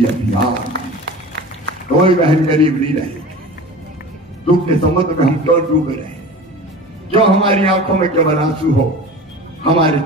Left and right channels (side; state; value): both; normal; correlation 0.36